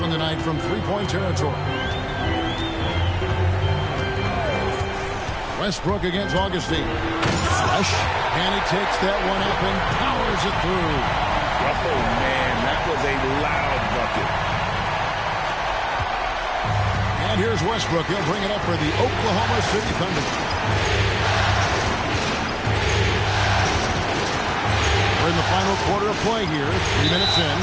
tonight from three-point territory. Westbrook against Augustine. Flush. And he takes that one up and powers it through. Oh, man, that was a loud bucket. And here's Westbrook. He'll bring it up for the Oklahoma City Thunder. We're in the final quarter of play here. 3 minutes in.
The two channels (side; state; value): both; identical; correlation 1.00